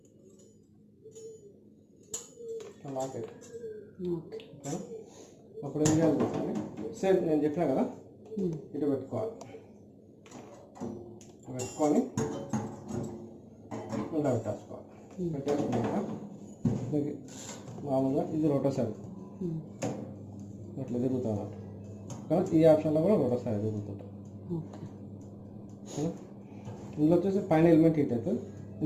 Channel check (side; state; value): both; identical; correlation 1.00